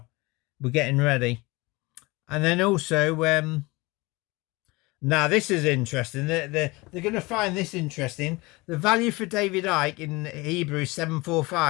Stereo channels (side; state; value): right; quieter; 23.6 dB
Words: We're getting ready. And then also, now this is interesting. They're going to find this interesting. The value for David Icke in Hebrew is